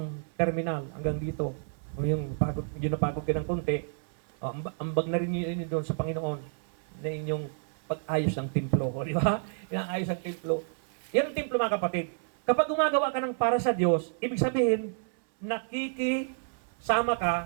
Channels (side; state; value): left; silent; 58 dB below the other